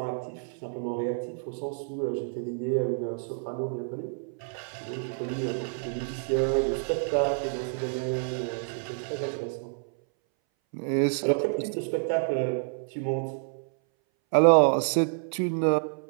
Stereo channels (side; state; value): left; silent; 59 dB below the other